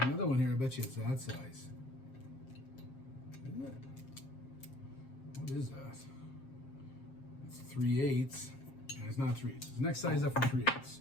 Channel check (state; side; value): late; right; 7.5 ms